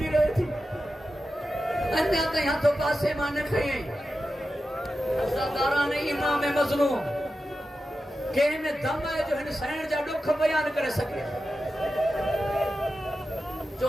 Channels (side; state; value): both; normal; correlation 0.91